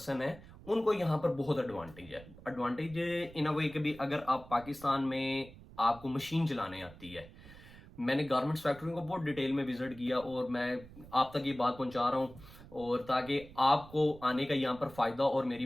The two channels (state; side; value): noise; right; rumble, 19 dB below the sound